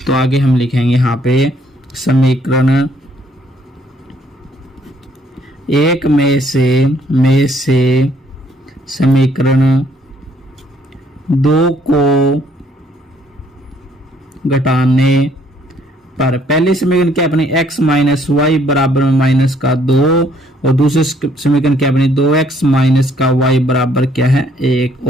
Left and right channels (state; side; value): normal; both; correlation 0.66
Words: तो आगे हम लिखेंगे यहाँ पे समीकरण 1 में से समीकरण 2 को घटाने पर पहले समीकरण क्या अपनी x माइनस वाई बराबर में -2, और दूसरे समीकरण क्या अपनी 2x माइनस का y बराबर क्या है? 1।